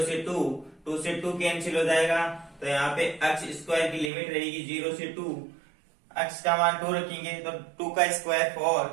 से 2 से 2 कैंसिल हो जाएगा, तो यहाँ पे एक्स स्क्वायर की लिमिट रहेगी 0 से 2, एक्स का मान 2 रखेंगे तो 2 का स्क्वायर 4,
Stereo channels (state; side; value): drops out; left; at 4.1 s